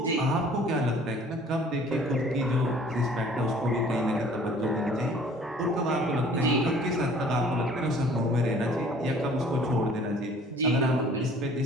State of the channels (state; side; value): normal; both; correlation 0.53